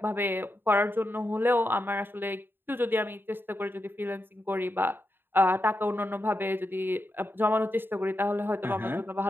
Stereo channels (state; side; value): late; left; 0.099 ms